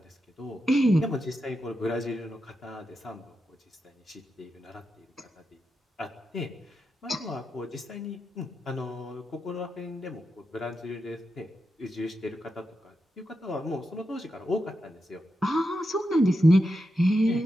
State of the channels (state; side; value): normal; both; correlation 0.87